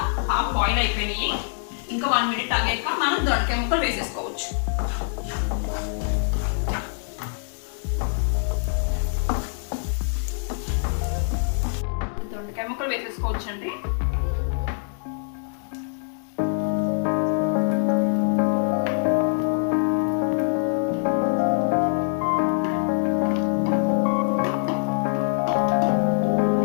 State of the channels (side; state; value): right; silent; digital silence